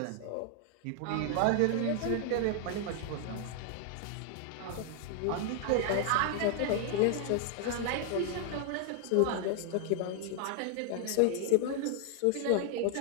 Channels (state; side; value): different; both; correlation 0.00